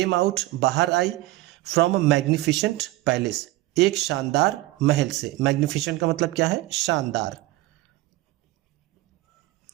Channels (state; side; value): quieter; left; 18.4 dB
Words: आउट, बाहर आई, फ्रॉम अ मैग्निफिसेंट पैलेस, एक शानदार महल से। मैग्निफिसेंट का मतलब क्या है, शानदार।